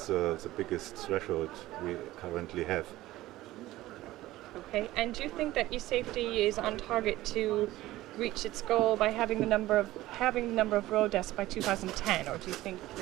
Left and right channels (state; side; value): quieter; left; 16.5 dB